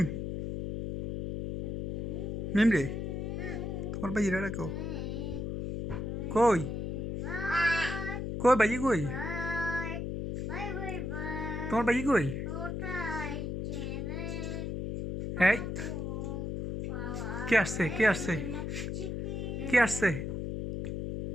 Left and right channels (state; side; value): noise; left; hum, 3 dB below the sound